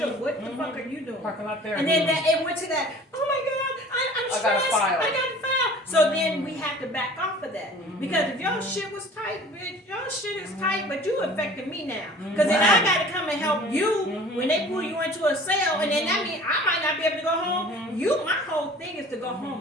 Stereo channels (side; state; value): both; normal; correlation 0.46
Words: fuck are you doing? Parking lot there. And then it went to that, oh my God, I'm I got a stressed, file. I got a file. So then we have to back off of that. Because if your shit was tight, bitch, your shit is tight, but you affecting me now. Because then I gotta come and help you when they pull you into a cell, and then that means I might not be able to go home. My whole thing is to go